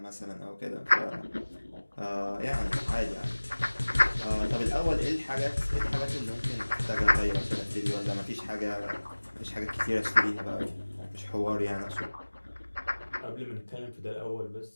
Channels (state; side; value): inverted; both; correlation -1.00